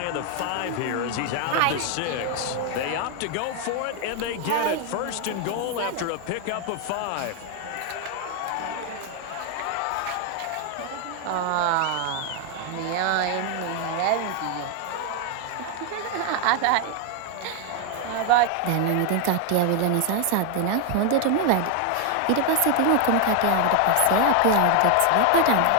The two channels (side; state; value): both; different; correlation 0.00